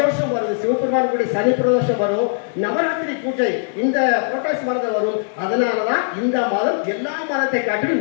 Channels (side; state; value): right; silent; digital silence